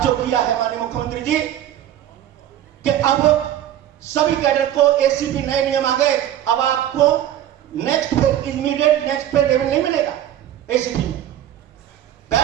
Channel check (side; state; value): left; quieter; 11.6 dB